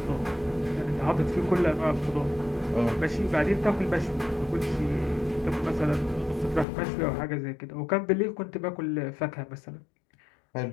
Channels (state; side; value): drops out; right; at 6.7 s